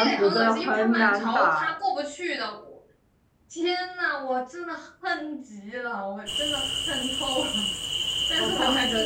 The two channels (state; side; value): identical; both; correlation 1.00